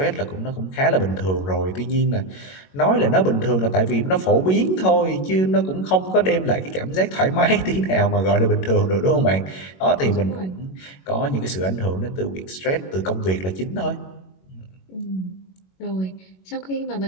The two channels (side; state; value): right; late; 21 ms